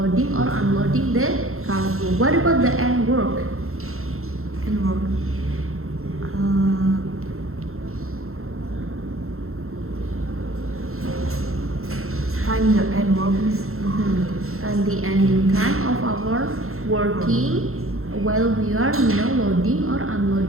or unloading the cargo. What about the end work? End work. Time the end work, Miss. And the ending time of our working while we are loading or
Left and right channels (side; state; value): left; late; 0.62 ms